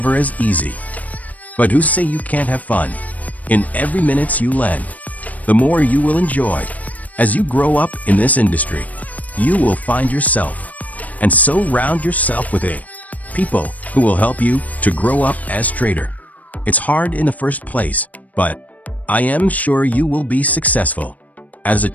as easy. But who say you can't have fun? In every minute you lend, the more you will enjoy. As you grow up in this industry, you will find yourself, and so round yourself with people who will help you to grow up as trader. It's hard in the first place, but I am sure you will be successful. As a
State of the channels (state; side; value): late; right; 0.073 ms